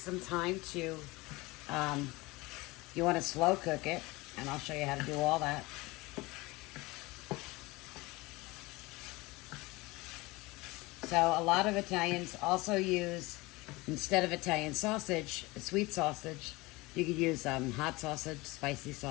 some time to, you want to slow cook it, and I'll show you how to do all that. So a lot of Italians also use, instead of Italian sausage, sweet sausage, you could use hot sausage, spicy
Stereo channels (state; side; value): quieter; right; 22.3 dB